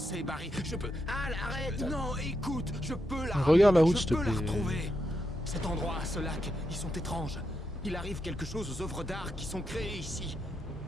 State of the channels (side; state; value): both; normal; correlation 0.83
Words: Barry. Je peux... Al, arrête. Non, écoute, je peux la... Regarde la route, s'il te Je peux plaît. la retrouver. Cet endroit, ce lac, ils sont étranges. Il arrive quelque chose aux œuvres d'art qui sont créées ici.